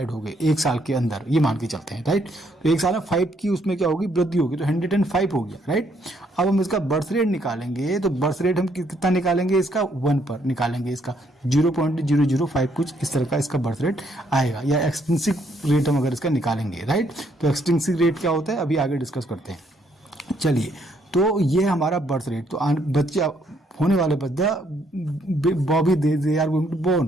हो गए एक साल के अंदर, ये मान के चलते हैं, राइट। तो एक साल में 5 की उसमें क्या होगी, वृद्धि होगी, तो 105 हो गया, राइट। अब हम इसका बर्थ रेट निकालेंगे, तो बर्थ रेट हम कितना निकालेंगे, इसका 1 पर निकालेंगे, इसका 0.005 कुछ इस तरह का इसका बर्थ रेट आएगा, या एक्सटेंसिव रेट हम अगर इसका निकालेंगे, राइट। तो एक्सटेंसिव रेट क्या होता है अभी आगे डिस्कस करते हैं। चलिए, तो ये हमारा बर्थ रेट, तो बच्चे होने वाले baby they are going to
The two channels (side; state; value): both; normal; correlation 0.70